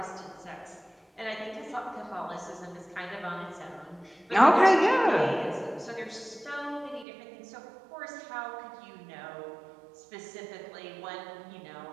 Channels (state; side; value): drops out; left; at 7.1 s